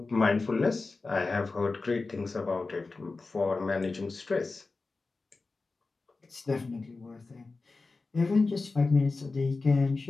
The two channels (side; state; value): right; quieter; 3.8 dB